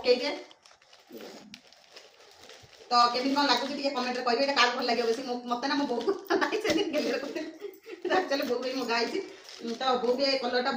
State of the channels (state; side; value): identical; both; correlation 1.00